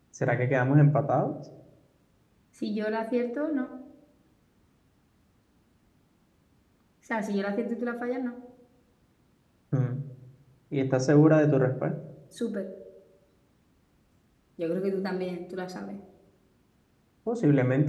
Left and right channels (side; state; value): both; identical; correlation 1.00